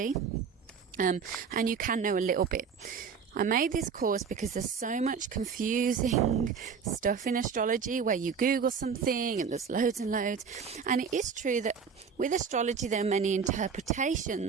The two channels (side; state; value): left; quieter; 6.3 dB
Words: and you can know a little bit. I made this course because there's so much confusing stuff in astrology where you Google something and there's loads and loads. And it is true that with astrology there are many